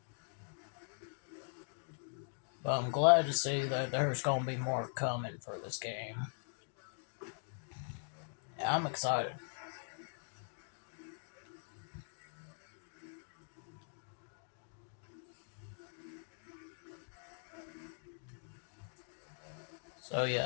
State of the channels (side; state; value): right; silent; digital silence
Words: But I'm glad to see that there's going to be more coming for this game. Yeah, I'm excited. So